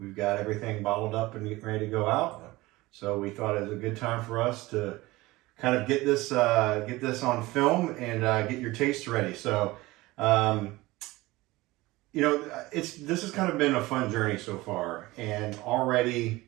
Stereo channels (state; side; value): quieter; left; 19.9 dB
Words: got everything bottled up and getting ready to go out. So we thought it was a good time for us to kind of get this on film and get your taste ready. So, this has kind of been a fun journey so far, and already